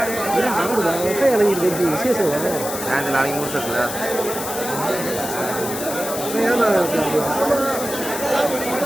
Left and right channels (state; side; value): noise; left; hiss, 7 dB below the sound